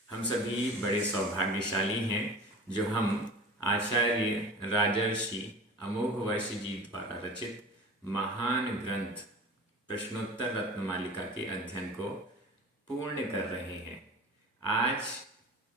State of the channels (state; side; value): normal; both; correlation 0.36